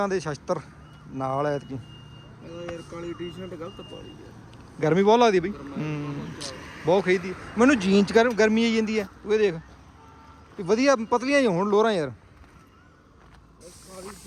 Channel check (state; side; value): identical; both; correlation 1.00